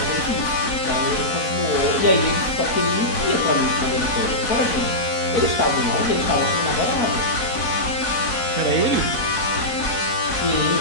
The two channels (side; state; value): right; late; 4.1 ms